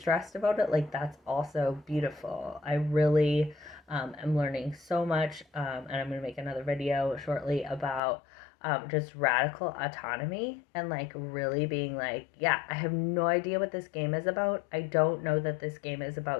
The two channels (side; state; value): right; drops out; at 8.0 s